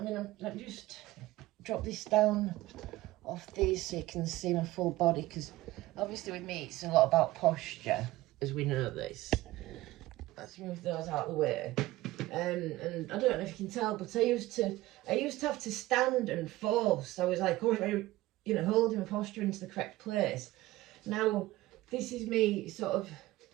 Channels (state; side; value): quieter; left; 17.6 dB